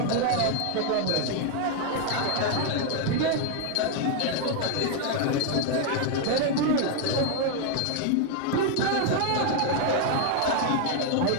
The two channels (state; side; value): different; both; correlation 0.01